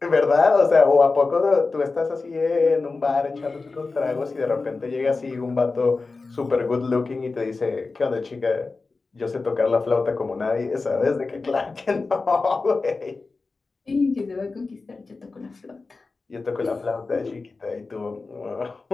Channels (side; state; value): right; quieter; 3.9 dB